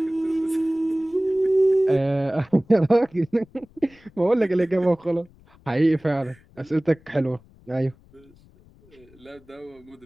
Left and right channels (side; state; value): left; noise; rumble, 28 dB below the sound